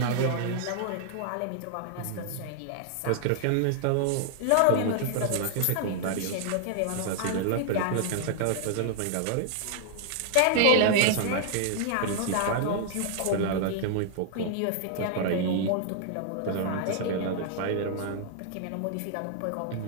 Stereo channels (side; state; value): both; different; correlation 0.00